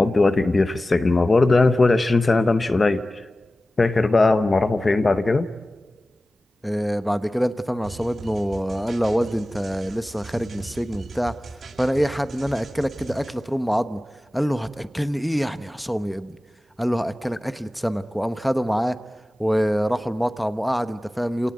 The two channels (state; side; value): normal; both; correlation 0.96